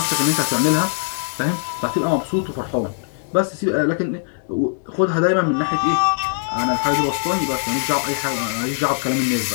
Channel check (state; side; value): silent; right; digital silence